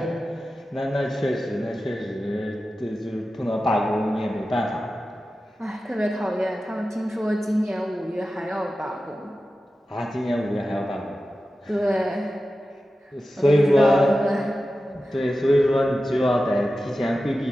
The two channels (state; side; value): normal; both; correlation 0.93